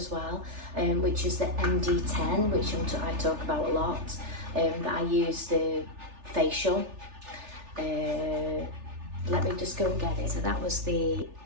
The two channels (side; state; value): left; late; 3.4 ms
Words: well, which is the MD10, which I talk about a lot, that I use the facial. Let me just go and get it. So that was the